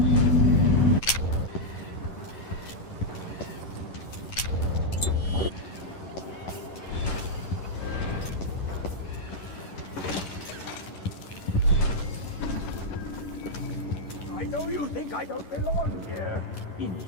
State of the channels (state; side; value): late; right; 11 ms